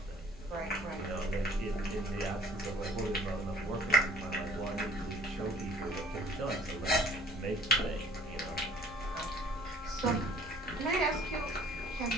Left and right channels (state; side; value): normal; both; correlation 0.54